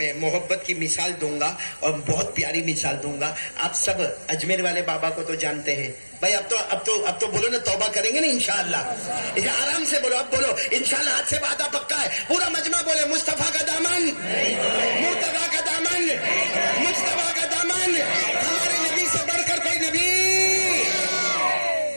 محبت کی مثال دوں گا اور بہت پیاری مثال دوں گا. آپ سب اجمیر والے بابا کو تو جانتے ہیں بھائی. اب تو بولو نا توبہ کریں گے نا انشاءاللہ. آرام سے بولو، اب بولو انشاءاللہ. ہاتھ سے وعدہ پکا ہے. پورا مجمع بولے مصطفیٰ کا دامن، مرتضیٰ کا دامن، مجتبیٰ کا دامن، ہمارے نبی سے بڑھ کر کوئی نبی.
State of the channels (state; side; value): inverted; both; correlation -1.00